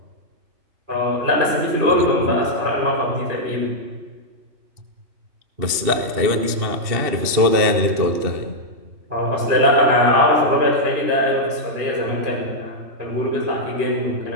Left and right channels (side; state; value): left; late; 2.7 ms